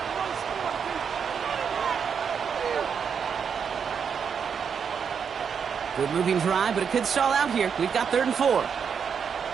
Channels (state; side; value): quieter; left; 6.9 dB